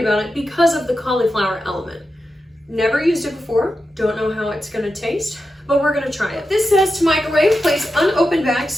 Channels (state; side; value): normal; both; correlation 0.90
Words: about it because of the cauliflower element. Never used it before, don't know how it's gonna taste, but we're gonna try it. This says to microwave, place unopened bag